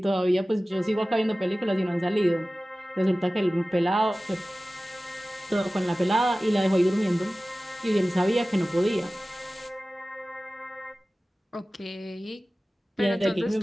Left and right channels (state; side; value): normal; both; correlation 0.97